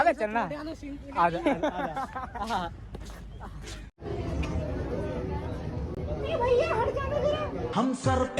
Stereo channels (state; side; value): identical; both; correlation 1.00